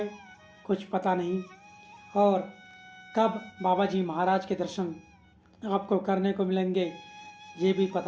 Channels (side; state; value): both; identical; correlation 1.00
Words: कुछ पता नहीं, और कब बाबा जी महाराज के दर्शन आपको करने को मिलेंगे ये भी